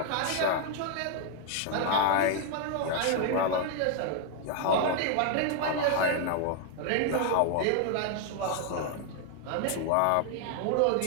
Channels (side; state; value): both; different; correlation 0.01